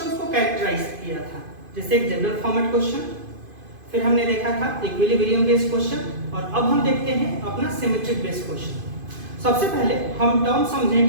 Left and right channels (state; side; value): late; left; 2.5 ms